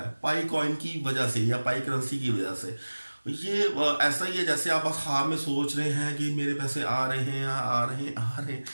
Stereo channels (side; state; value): both; inverted; correlation -1.00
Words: پائی کوائن کی وجہ سے یا پائی کرنسی کی وجہ سے. یہ ایسا ہی ہے جیسے آپ خواب میں سوچ رہے ہیں کہ میرے پیسے آ رہے ہیں